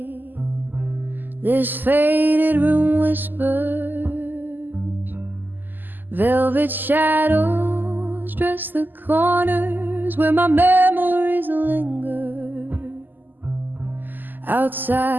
this faded room whispers. Velvet shadows dress the corners where my memories linger.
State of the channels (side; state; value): left; late; 0.088 ms